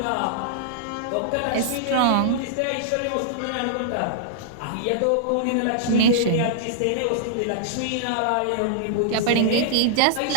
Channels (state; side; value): different; both; correlation -0.01